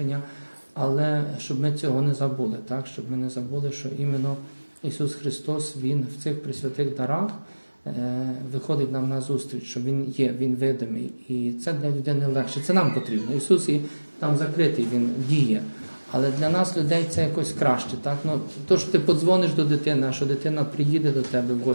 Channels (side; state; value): both; inverted; correlation -1.00